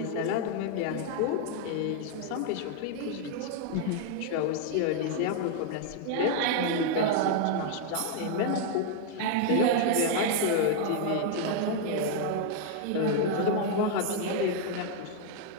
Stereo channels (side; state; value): both; different; correlation 0.00